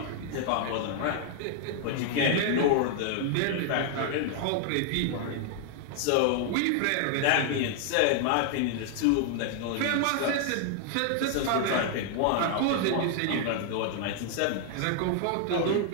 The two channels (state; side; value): different; both; correlation 0.00